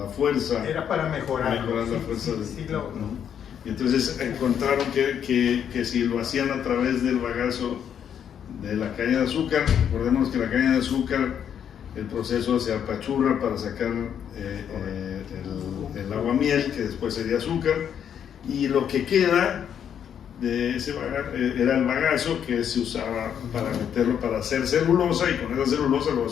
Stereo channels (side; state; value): right; quieter; 8.7 dB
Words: fuerza. Era para mejorar la fuerza. ¿no? Y entonces encontraron que si lo hacían a través del bagazo de la caña de azúcar, recordemos que la caña de azúcar, el proceso se apachurra para sacar el aguamiel, que después sería azúcar, y lo que queda de ese era el bagazo, que se usaba para meterlo, para hacer celulosa, y con esa celulosa luego